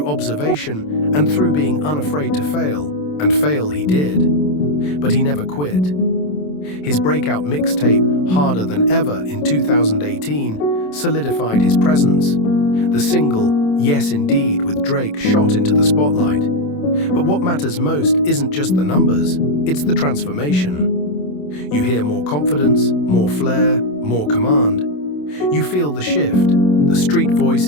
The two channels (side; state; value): right; late; 27 ms